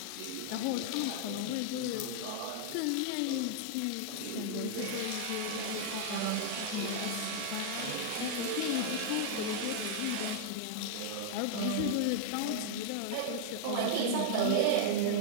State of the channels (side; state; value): both; different; correlation -0.01